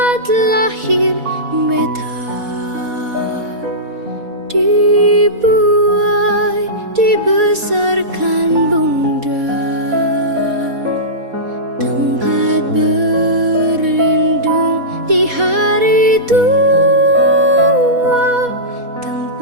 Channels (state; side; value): late; left; 4.1 ms